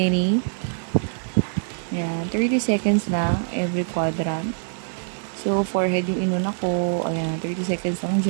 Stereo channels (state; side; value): silent; left; digital silence